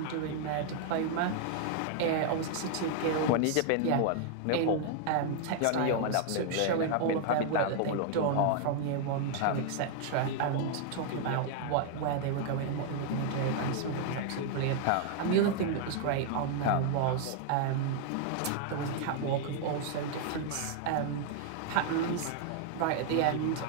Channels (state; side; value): different; both; correlation 0.00